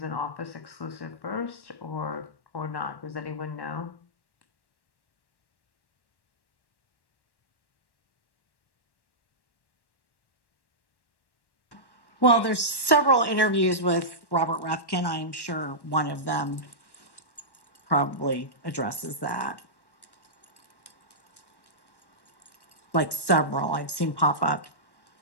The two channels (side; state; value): right; late; 1.1 ms